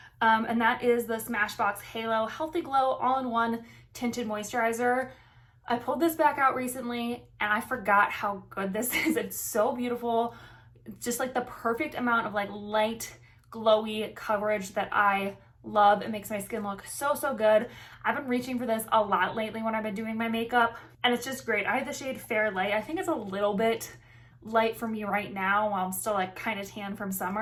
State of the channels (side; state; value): both; identical; correlation 1.00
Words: And that is the Smashbox Halo Healthy Glow All-in-One Tinted Moisturizer. I pulled this back out recently and I forgot how good this is. It's so beautiful. It's just like the perfect amount of like light, glowy coverage that I love. It makes my skin look so, so good. I've been reaching for this a lot lately when I've been doing my makeup, and it's just great. I have the shade Fair Light. I think it's a little bit light for me right now while I'm still like kind of tan from